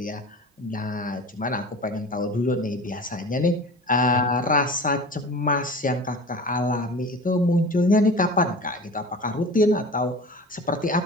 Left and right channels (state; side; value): normal; both; correlation 0.37